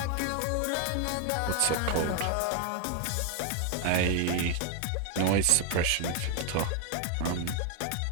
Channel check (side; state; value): both; different; correlation 0.01